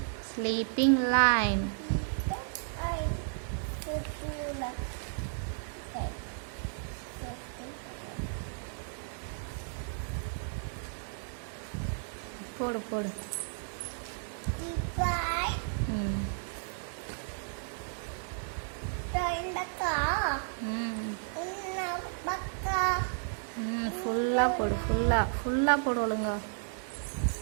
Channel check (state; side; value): silent; left; digital silence